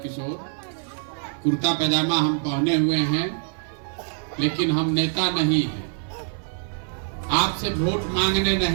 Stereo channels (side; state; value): left; silent; digital silence